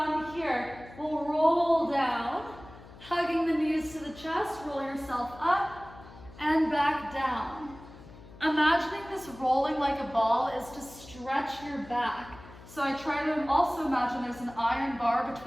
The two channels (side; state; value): left; noise; hum, 19 dB below the sound